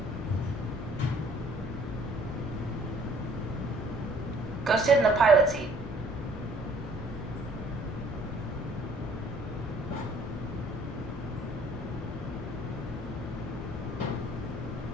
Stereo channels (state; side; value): normal; both; correlation 0.58